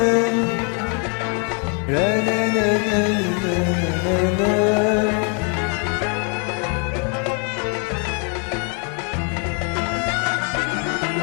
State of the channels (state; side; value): quieter; right; 39.7 dB